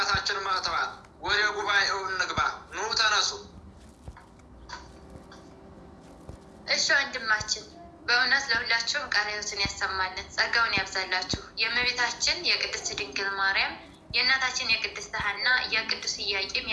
መጥተዋል። ወደ ጉባኤው እንግባ። ኑ ተነሱ። እሺ ወንድማችን፣ በእውነት ለሁላችሁም ቃለ ሕይወትን ያሰማልን፣ ጸጋውን ያብዛላችሁ። የእመቤታችን የቅድስት ድንግል ማርያም፣ የእናታችን የቅድስት ሐና፣ የቅዱስ ኢያቄም፣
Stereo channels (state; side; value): identical; both; correlation 1.00